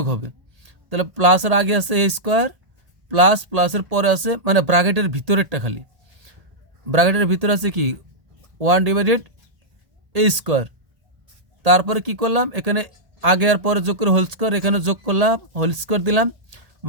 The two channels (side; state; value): left; late; 1.8 ms